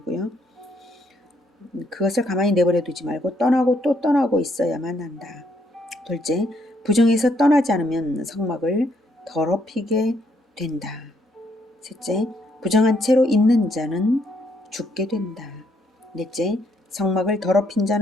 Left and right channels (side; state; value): both; normal; correlation 0.71